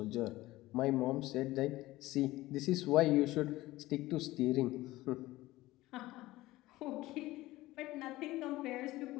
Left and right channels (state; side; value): quieter; right; 17.8 dB